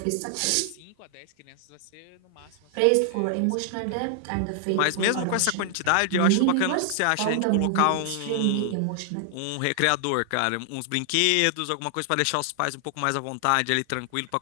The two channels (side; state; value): both; different; correlation 0.00